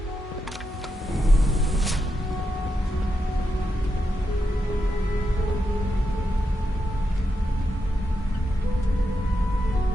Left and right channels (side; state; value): both; normal; correlation 0.85